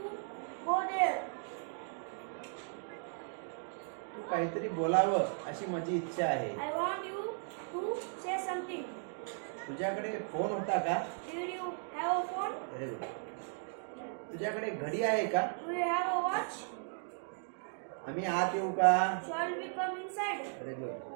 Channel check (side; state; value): left; silent; 54 dB below the other